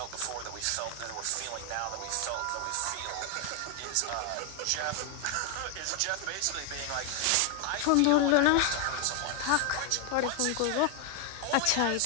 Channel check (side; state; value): both; different; correlation 0.01